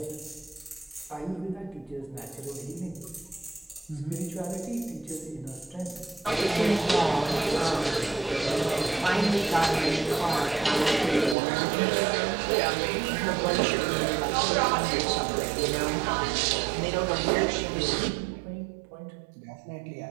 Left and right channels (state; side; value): drops out; left; at 11.4 s